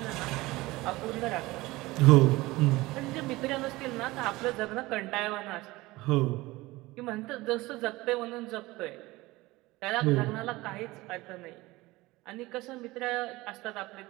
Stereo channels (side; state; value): left; quieter; 20.0 dB